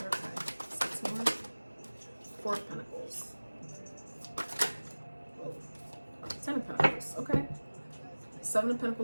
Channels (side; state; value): both; inverted; correlation -1.00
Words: 6 more. 4 of Pentacles. Whoa. 10 of Pentacles. Okay. 7 of